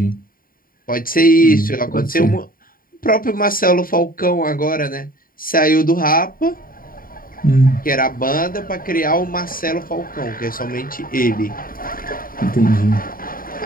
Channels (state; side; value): late; right; 0.41 ms